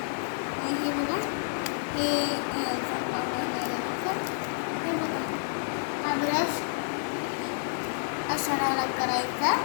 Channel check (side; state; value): right; silent; 58 dB below the other